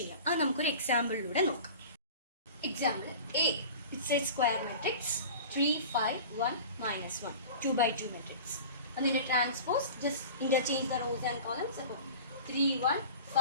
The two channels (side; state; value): both; inverted; correlation -0.37